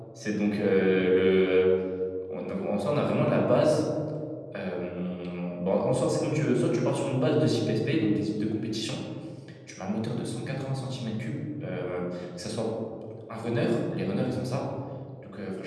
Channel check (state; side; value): identical; both; correlation 1.00